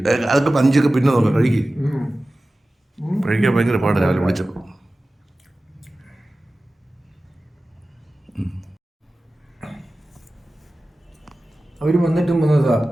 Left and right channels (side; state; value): both; normal; correlation 0.96